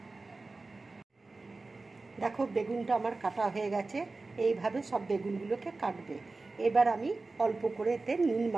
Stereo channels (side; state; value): left; quieter; 3.5 dB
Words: দেখো, বেগুনটা আমার কাটা হয়ে গেছে। এইভাবে সব বেগুনগুলোকে কাটবে। এবার আমি অল্প করে এতে নুন